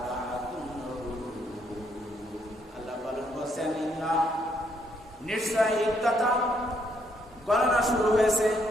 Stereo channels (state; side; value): normal; both; correlation 0.72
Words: হুরুম। আল্লাহ বলেছেন ইন্না নিশ্চয় ইদ্দাতা গণনা শুরু হয়েছে,